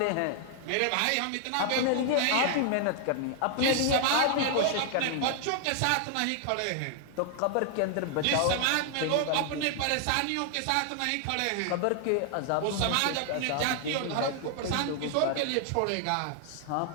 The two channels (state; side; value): different; both; correlation 0.00